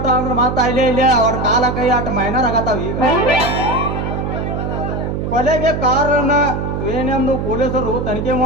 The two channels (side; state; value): right; noise; hum, 3 dB below the sound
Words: ಅಂದ್ರೆ ಮಾತಾ ಇಲ್ಲೇ ಅವ್ರ ಕಾಲ ಕೈ ಆಟ ಮೈನರ್ ಆಗತ್ತಾವ. ಈಗ ಕೊಲೆಗೆ ಕಾರಣ ಏನೆಂದು ಪೊಲೀಸರು ತನಿಖೆ